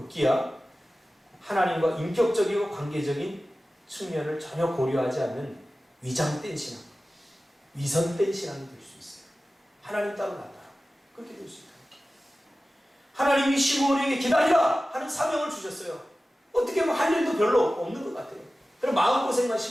하나님과 인격적이고 관계적인 측면을 전혀 고려하지 않는 위장된 신앙, 위선된 신앙이 될 수 있어요. 하나님 따로 나타나 그렇게 될 수 있다. 하나님이 시므온에게 기다리라 하는 사명을 주셨어요. 어떻게 보면 할 일도 별로 없는 것 같아요. 그럼 마음고생만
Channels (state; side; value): normal; both; correlation 0.96